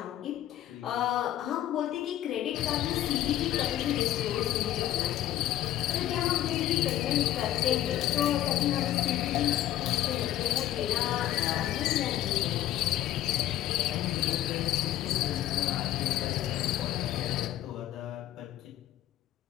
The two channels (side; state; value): right; quieter; 12.8 dB